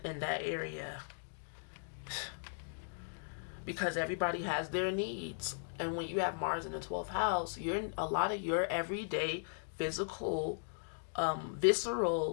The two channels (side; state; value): right; silent; digital silence